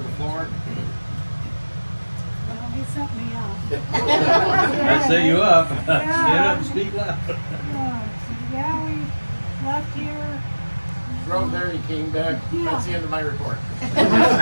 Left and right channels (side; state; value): both; inverted; correlation -1.00